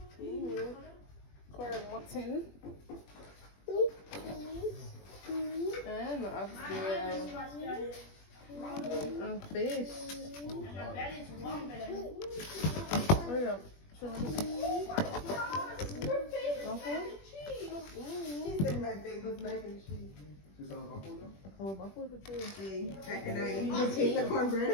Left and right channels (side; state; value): right; late; 21 ms